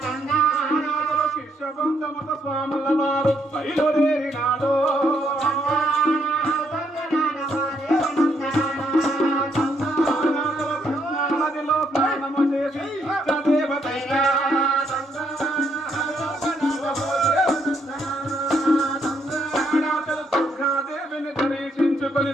శిష్యబంధ మత స్వాముల వారు బయలుదేరినాడు. నదిలో స్నానము చేసి దేవతైనా దేవిని దర్శించుకొని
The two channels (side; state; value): both; normal; correlation 0.73